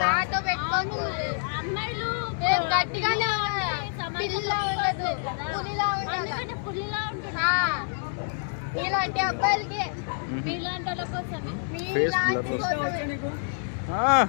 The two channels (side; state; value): right; silent; 60 dB below the other